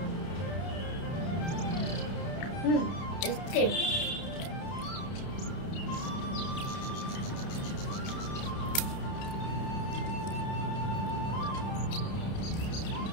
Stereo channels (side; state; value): right; late; 30 ms